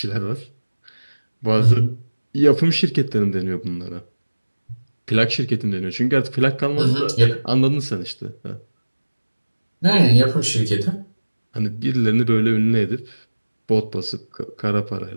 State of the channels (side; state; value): both; inverted; correlation -1.00